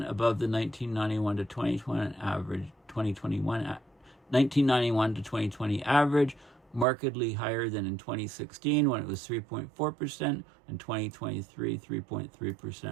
above the 1991 to 2021 average. 1991 to 2020 average, markedly higher than in 2016 when it was 3.4%, and 2023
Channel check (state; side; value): drops out; left; at 6.9 s